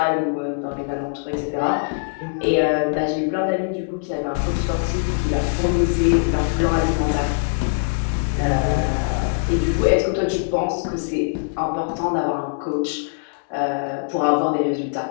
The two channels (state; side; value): silent; right; 64 dB below the other